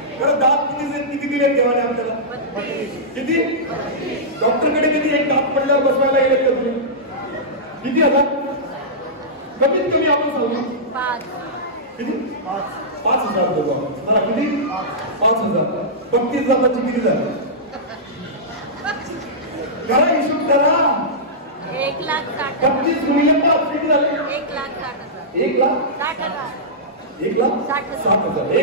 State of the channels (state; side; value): normal; both; correlation -0.14